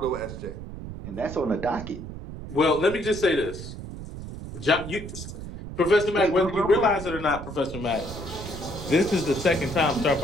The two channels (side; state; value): right; noise; rumble, 10 dB below the sound